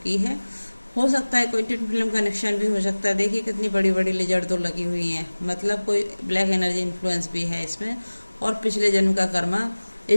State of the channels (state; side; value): inverted; both; correlation -1.00